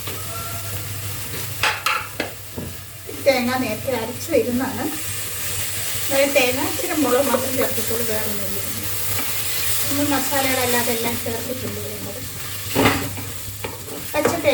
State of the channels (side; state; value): both; identical; correlation 1.00